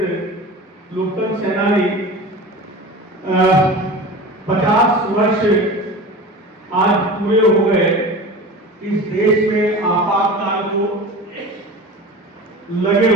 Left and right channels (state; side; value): normal; both; correlation 0.34